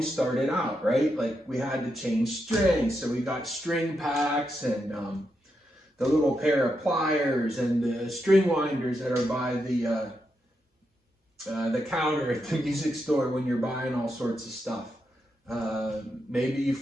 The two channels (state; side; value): normal; both; correlation 0.84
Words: started out, right? Like we had to change strings. So we got string packs and the little pair of pliers and the string winders that are by the counter at the music store when you're buying all sorts of stuff. Maybe you